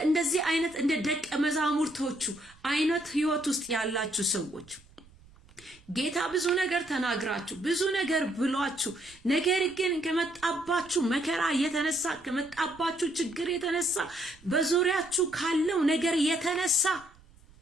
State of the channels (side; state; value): right; noise; rumble, 26 dB below the sound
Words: እንደዚህ አይነት እንደ ደቀ መዛሙርቶቹ አይነት ህይወት ውስጥ ያላችሁ ሰዎች ጌታ ብዙ ነገር ተናግራችሁ ብዙ ነገር ብሏችሁ ነገር ግን ከመጣባችሁ መከራ የተነሳ ከመጣባችሁ ችግር የተነሳ በዙሪያችሁ ካለው ነገር የተነሳ